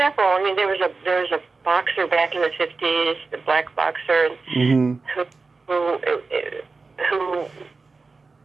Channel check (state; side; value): quieter; left; 4.1 dB